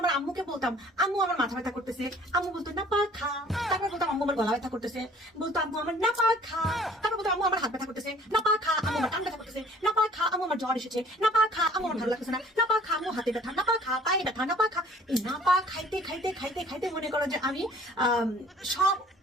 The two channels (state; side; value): normal; both; correlation 0.53